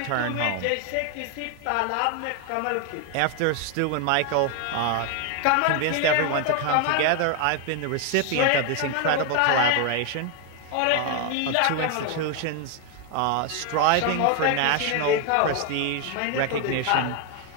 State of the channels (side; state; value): both; different; correlation 0.01